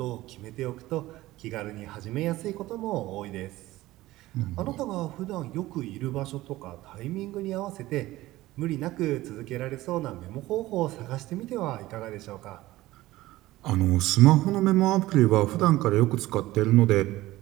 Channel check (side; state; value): left; quieter; 17.2 dB